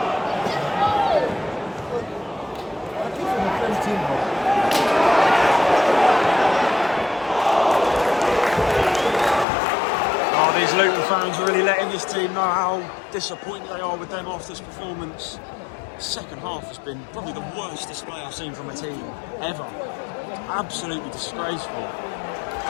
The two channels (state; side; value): drops out; right; at 9.5 s